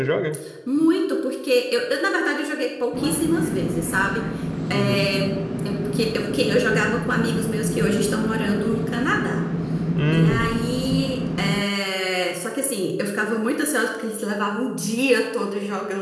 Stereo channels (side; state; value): both; identical; correlation 1.00